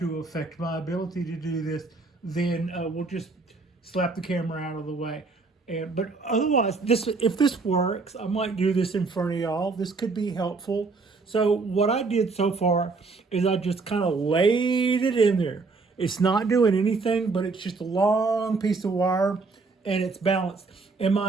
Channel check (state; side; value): quieter; left; 4.0 dB